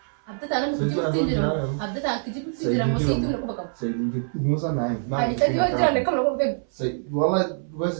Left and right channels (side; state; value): left; silent; 62 dB below the other